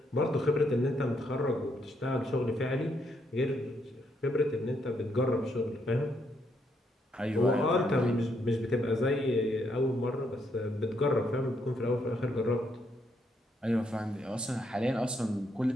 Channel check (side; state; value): both; normal; correlation 0.75